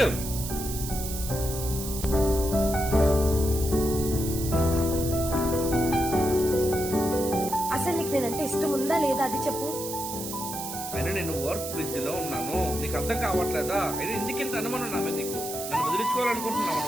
అసలు నీకు నేనంటే ఇష్టం ఉందా లేదా అది చెప్పు. అయినా నేను వర్క్ బిజీలో ఉన్నాను, నీకు అర్థం కావట్లేదా? అయినా ఎందుకింత అనుమానం నా మీద నీకు? నన్ను వదిలించుకోవాలనుకుంటున్నావు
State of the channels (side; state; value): right; noise; hiss, 7 dB below the sound